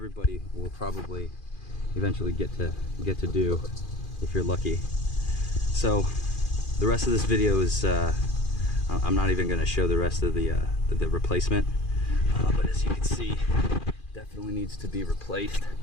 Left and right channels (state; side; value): late; right; 2.4 ms